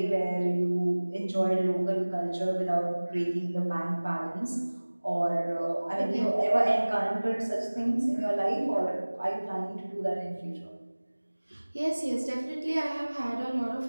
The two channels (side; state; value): both; inverted; correlation -1.00